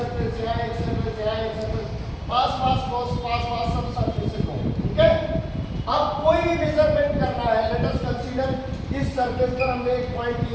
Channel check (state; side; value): identical; both; correlation 1.00